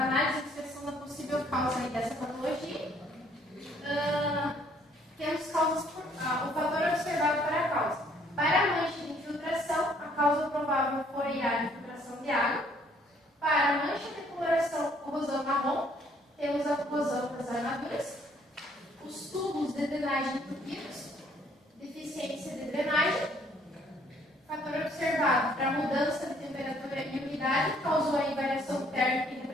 de inspeção da possível causa aí dessa patologia. Temos causas o fator observado para a causa. Para a mancha de infiltração, a causa provável foi a infiltração de água. Para a mancha de coloração, corrosão marrom, temos a corrosão das armaduras. Os tubos de drenagem entupidos, deficiência de drenagem. Fator observado para a mudança de temperatura e umidade causou a variação térmica e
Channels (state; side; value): normal; both; correlation 0.63